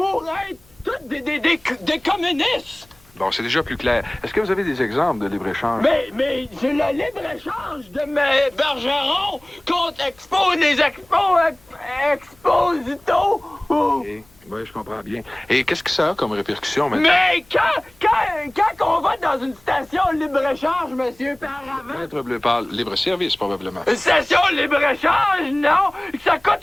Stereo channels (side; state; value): left; noise; hum, 30 dB below the sound